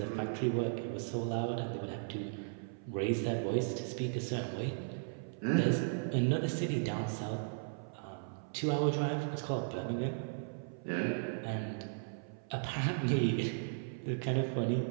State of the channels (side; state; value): left; silent; 54 dB below the other